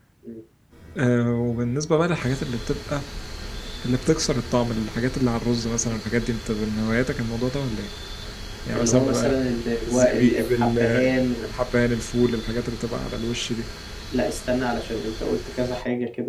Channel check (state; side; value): identical; both; correlation 1.00